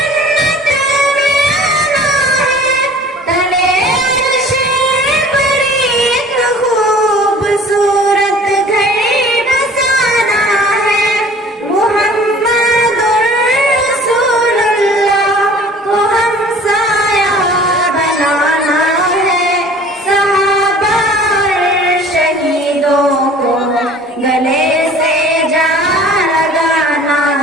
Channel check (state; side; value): normal; both; correlation 0.48